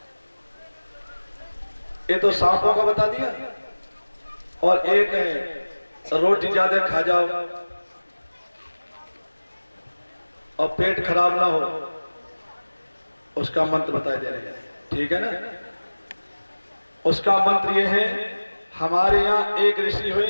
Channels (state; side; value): inverted; both; correlation -1.00